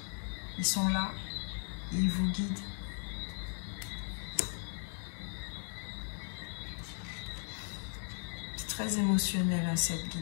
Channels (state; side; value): silent; right; 53 dB below the other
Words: Ils sont là. Ils vous guident. C'est très émotionnel hein, cette